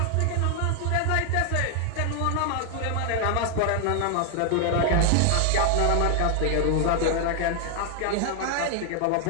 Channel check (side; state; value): both; different; correlation 0.00